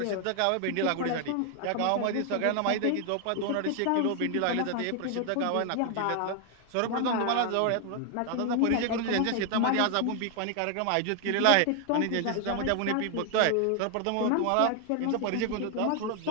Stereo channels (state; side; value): different; both; correlation 0.00